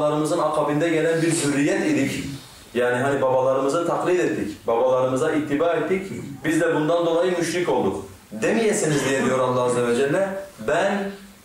akabinde gelen bir zürriyet idik. Yani hani babalarımızı taklit ettik, babalarımıza ittiba ettik, biz de bundan dolayı müşrik olduk demeyesiniz diye diyor Allah Azze ve Celle. Ben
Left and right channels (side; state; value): both; identical; correlation 1.00